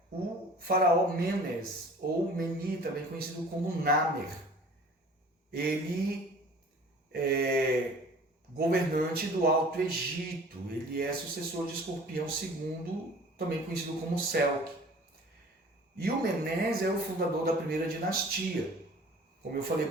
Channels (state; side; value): normal; both; correlation 0.47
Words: o faraó Menes, ou Meni, também conhecido como Namer. Ele é governante do Alto Egito, ele é sucessor de Escorpião II, também conhecido como Selk. E o Menes é o fundador da primeira dinastia. Como eu falei